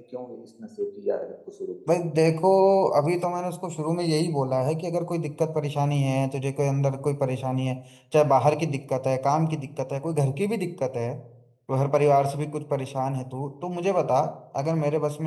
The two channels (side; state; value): both; identical; correlation 1.00